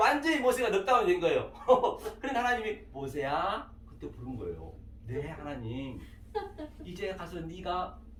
모세가 넉다운이 된 거예요. 그러니까 하나님이 모세야 그때 부른 거예요. 네 하나님 이제 가서 네가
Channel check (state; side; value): identical; both; correlation 1.00